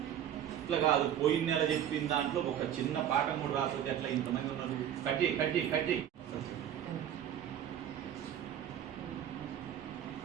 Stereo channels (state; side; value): quieter; left; 10.2 dB